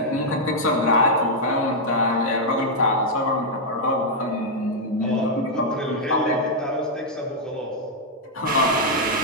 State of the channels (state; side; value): normal; both; correlation -0.04